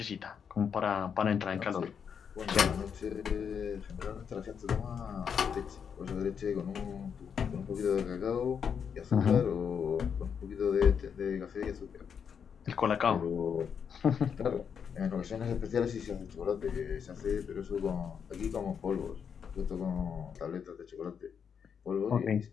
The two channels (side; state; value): right; quieter; 7.1 dB